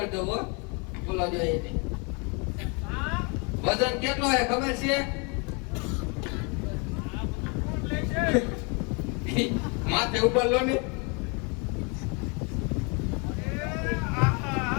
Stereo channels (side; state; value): right; quieter; 32.8 dB